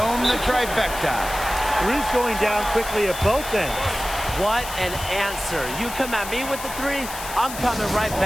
the trifecta. Three's going down quickly at both ends. What an answer. You come at me with the 3, I'm coming right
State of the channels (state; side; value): noise; left; hiss, 10 dB below the sound